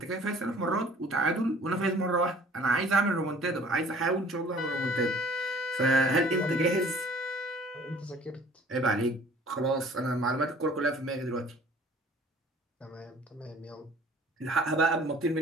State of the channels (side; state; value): both; normal; correlation 0.51